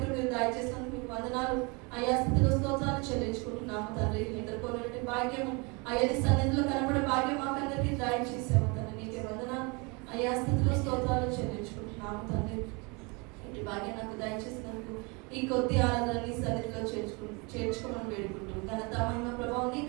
మీరు దయచేసినందుకు మీకు వందనాలు. అయ్యా స్థితిలో స్తోత్రాలు చెల్లించుకుంటున్నాము తండ్రి. ఎదుర్కొనే భాగ్యము అయ్యా నీ సన్నిధిలో కనబడే భాగ్యం మాకందరికీ దయచేసాము తండ్రి. నీకే వందనాలు. అయ్యా స్థితిలో స్తోత్రాలు చెల్లించుకుంటున్నాము తండ్రి. ఇటు భాగ్యం నాకు దయచేసినందుకు ఈ కొద్ది ఆరాధన నీ సన్నిధిలో చేర్చుకోమని వేడుకుంటూ ఘనత మహిమ ప్రభావం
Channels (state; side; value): quieter; left; 29.6 dB